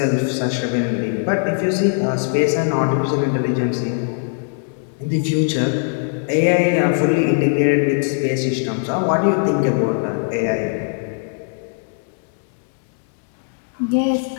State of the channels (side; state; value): right; silent; 66 dB below the other